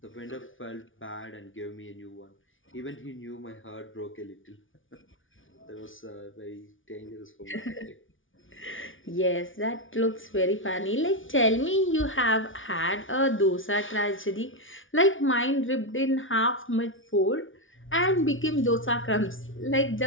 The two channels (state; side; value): late; right; 0.57 ms